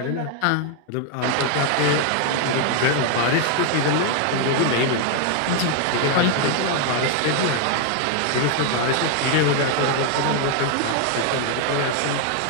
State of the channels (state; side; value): different; both; correlation 0.00